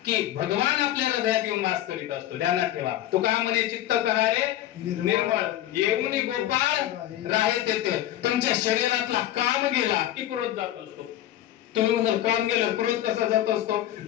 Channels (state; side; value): quieter; right; 13.2 dB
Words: की भगवान आपल्या हृदयात येऊन वास करीत असतो. ध्यानात ठेवा, तुका म्हणे चित्त करारे निर्मळ, येऊन गोपाळ राहे तेथे. तुमच्या शरीरातला काम गेला की क्रोध जात असतो. तुम्ही म्हणाल काम गेलं, क्रोध कसा जात असतो?